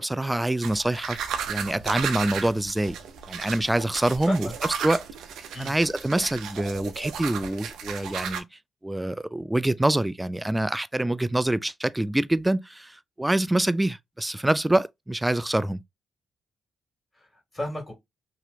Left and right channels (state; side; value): normal; both; correlation 0.97